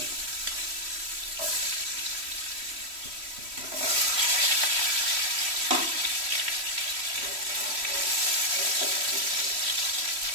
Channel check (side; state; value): left; late; 3.1 ms